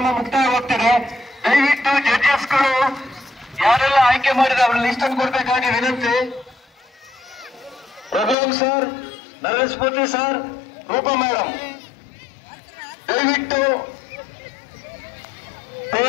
ಮುಕ್ತಾಯವಾಗ್ತದೆ. ದಯವಿಟ್ಟು ಜಡ್ಜಸ್ಗಳು ಯಾರೆಲ್ಲ ಆಯ್ಕೆ ಮಾಡಿದ್ರೆ ಅವ್ರ ಲಿಸ್ಟ್ ಅನ್ನು ಕೊಡ್ಬೇಕಾಗಿ ವಿನಂತಿ. ರಘುರಾಮ್ ಸರ್, ನರೇಶ್ ಮೂರ್ತಿ ಸರ್, ರೂಪಾ ಮೇಡಮ್, ದಯವಿಟ್ಟು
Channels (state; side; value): drops out; right; at 8.3 s